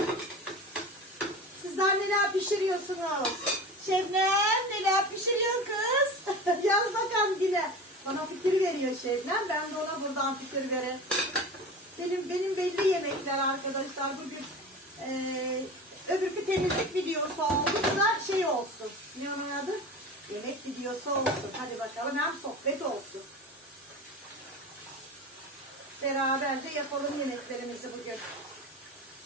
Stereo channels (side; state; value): both; normal; correlation 0.32